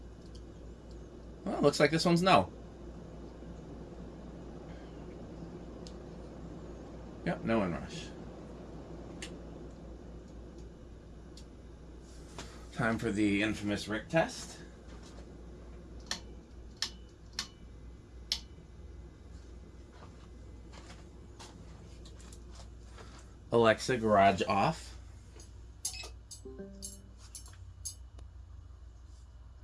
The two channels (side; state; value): both; identical; correlation 1.00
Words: Well, looks like this one's no. Yep, no inrush. Time for the infamous Rick test. Alexa, garage off.